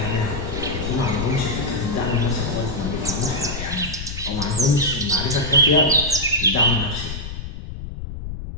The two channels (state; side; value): noise; left; rumble, 8 dB below the sound